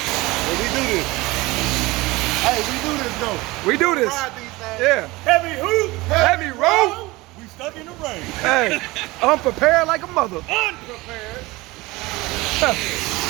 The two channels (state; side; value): quieter; left; 21.3 dB